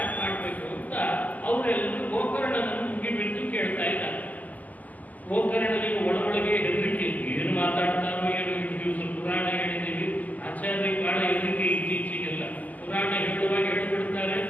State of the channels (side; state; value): right; late; 0.077 ms